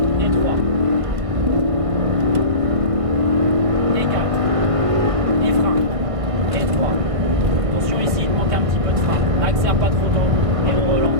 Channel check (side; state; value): left; late; 1.5 ms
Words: Et 3. Et 4. Et frein. Et 3. Attention ici, il manque un petit peu de frein. Accélère pas trop tôt. Et on